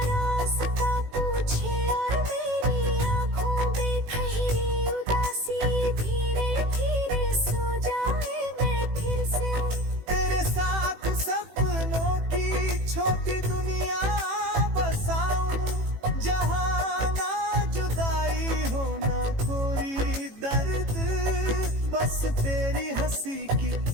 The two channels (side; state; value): left; late; 18 ms